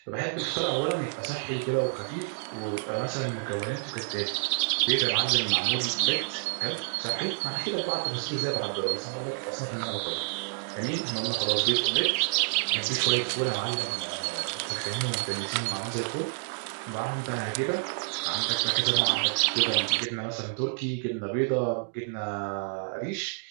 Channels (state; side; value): silent; left; digital silence